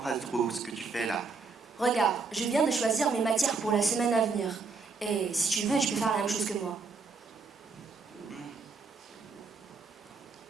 trop ce que tu fais là. Regarde, je viens de choisir mes matières pour la semaine à venir. Et si tu veux, tu peux faire la même chose que moi.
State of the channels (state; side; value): quieter; left; 4.4 dB